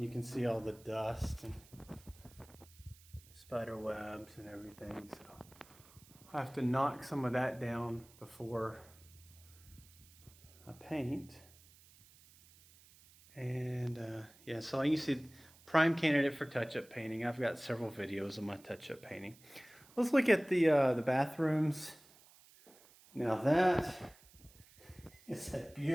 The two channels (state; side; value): noise; right; hiss, 25 dB below the sound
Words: you can see all the dust and spider webs and everything. So I have to knock some of that down before I paint. And yeah, so you see, prime candidate for touch-up painting. I've got several videos of my touch-up painting. Let's look at the bathrooms. Now that is a